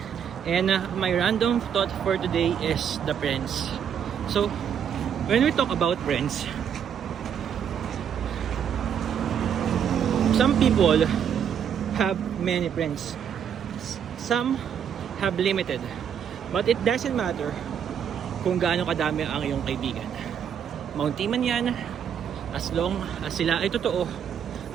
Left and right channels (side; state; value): left; quieter; 8.3 dB